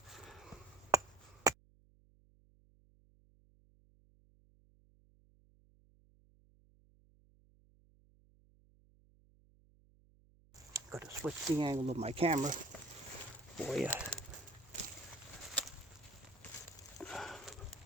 Got to switch the angle of my camera for you.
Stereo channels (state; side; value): noise; right; hum, 27 dB below the sound